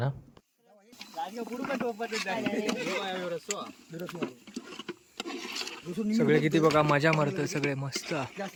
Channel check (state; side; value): identical; both; correlation 1.00